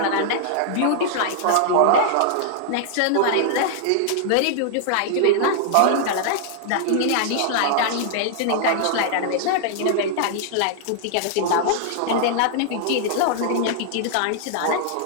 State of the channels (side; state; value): both; different; correlation -0.01